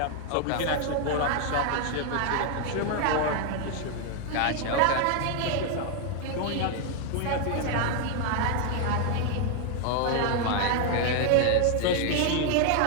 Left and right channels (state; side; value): different; both; correlation 0.00